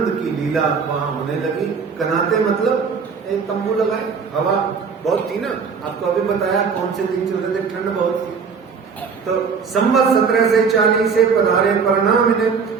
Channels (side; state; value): left; quieter; 5.7 dB